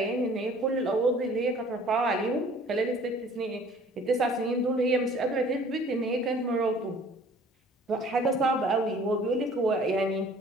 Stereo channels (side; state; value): both; normal; correlation 0.52